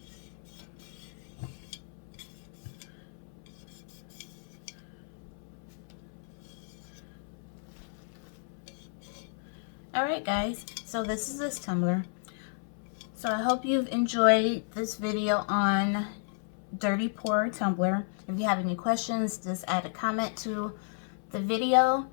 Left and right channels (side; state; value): right; silent; 56 dB below the other